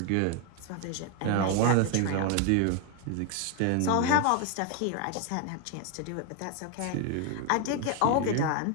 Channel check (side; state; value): both; different; correlation 0.01